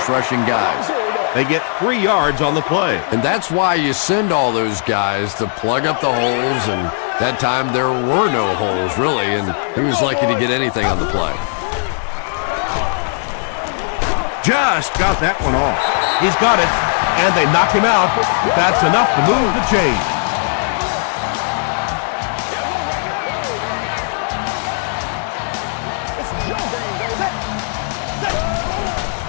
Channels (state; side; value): silent; right; 66 dB below the other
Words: guys. They get 3 yards on the play. And that's why you send all those guys to plug up the holes, and that time there were no holes, really, and he was lucky to get anything on the play. Just got that one off. He's got it, and they knock him out. That's enough to move the chain.